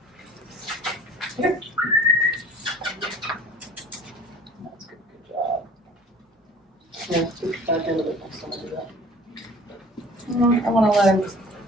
Here. That's good, good job. Yeah, scoot back into it next time I do that. I wanna let him,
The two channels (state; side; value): normal; both; correlation 0.47